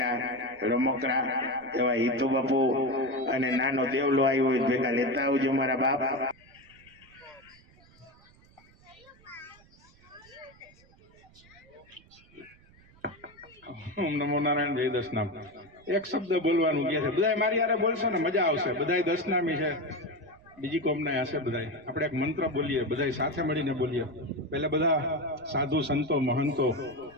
રમકડા એવા હિતુ બાપુ અને નાનો દેવલો આવ્યો હોય ભેગા લેતા આવજો મારા બાપ. ઓમ નમો નારાયણ, જય દશનામ. એક શબ્દ બોલવાનું કહે છે, બધા મારી યારે બોલશો ને મજા આવશે. બધા દશનામી છે, બીજી કોમના હશે. બધા આપણે એક મંત્ર બોલીએ, બધા સાથે મળીને બોલીએ. પહેલા બધા સાધુ સંતો, મહંતો,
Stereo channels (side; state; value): right; noise; rumble, 27 dB below the sound